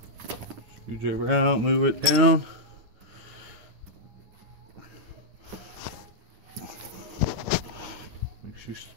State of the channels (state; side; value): late; left; 9.4 ms